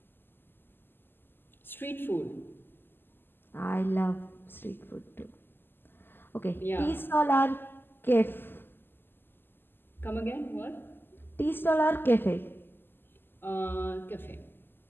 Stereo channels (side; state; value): right; late; 0.098 ms